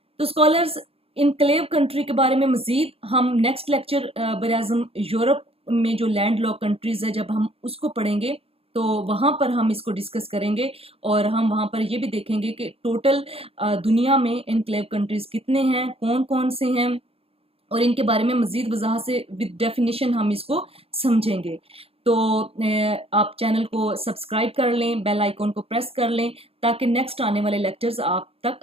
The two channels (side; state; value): left; late; 0.28 ms